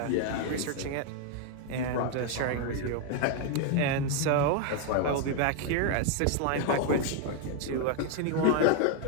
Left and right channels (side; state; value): both; different; correlation 0.01